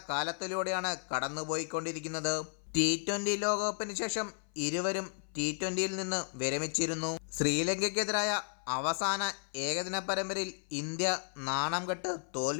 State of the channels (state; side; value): silent; right; 55 dB below the other